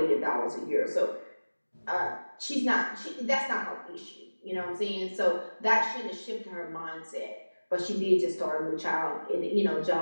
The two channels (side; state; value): both; inverted; correlation -1.00